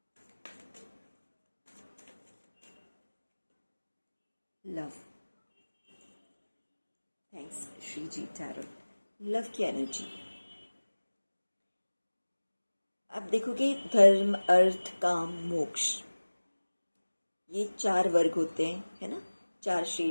लव, थैंक्स श्री जी टैरो। लव की एनर्जी आप देखोगे, धर्म, अर्थ, काम, मोक्ष, ये 4 वर्ग होते हैं, है ना, 4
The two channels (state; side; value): inverted; both; correlation -1.00